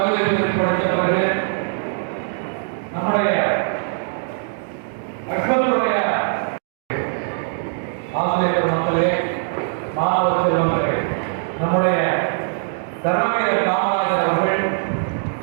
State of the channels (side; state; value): left; silent; digital silence